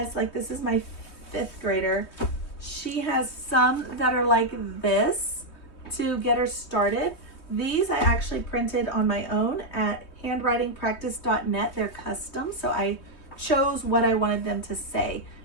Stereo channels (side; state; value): right; late; 3.2 ms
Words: like, this is my 5th grader. She has some that are like this to get her started. These I actually printed on my own at handwritingpractice.net. They're custom, so I chose what I wanted them to say.